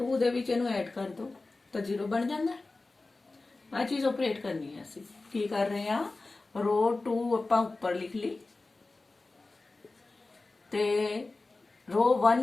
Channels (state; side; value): quieter; right; 3.4 dB